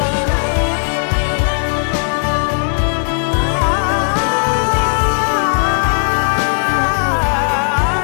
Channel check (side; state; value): right; silent; digital silence